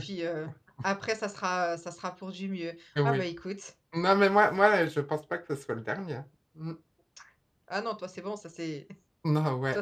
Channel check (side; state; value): both; identical; correlation 1.00